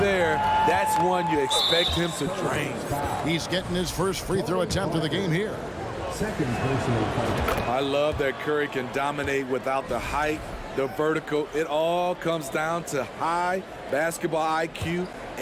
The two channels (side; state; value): both; identical; correlation 1.00